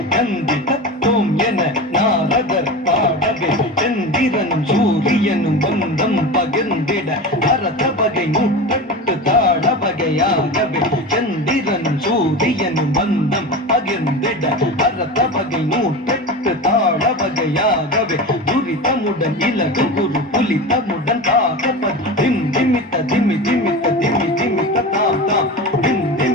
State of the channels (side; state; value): both; normal; correlation 0.27